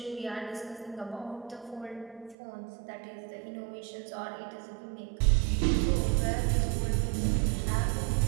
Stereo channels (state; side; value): drops out; left; at 2.4 s